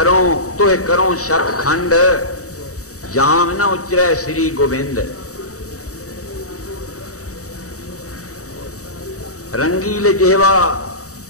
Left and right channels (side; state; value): right; late; 0.65 ms